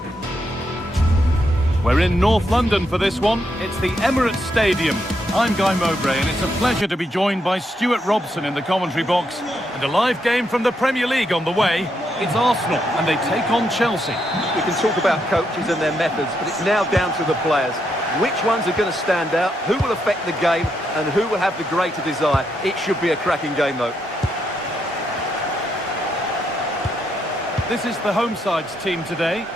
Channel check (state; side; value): normal; both; correlation 0.79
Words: We're in North London for this one. It's the Emirates Stadium. I'm Guy Mowbray, and it's a pleasure to be joined by Stuart Robson in the commentary box. And a live game from the Premier League on the way. It's Arsenal, and they take on Chelsea. We can talk about coaches and their methods, but it's now down to the players. Which ones are going to stand out, who will affect the game, and who will have the greater desire. It should be a cracking game, though. This is the home side's team today.